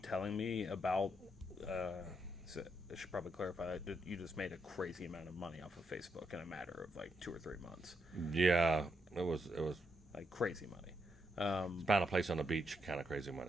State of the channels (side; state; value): both; normal; correlation 0.80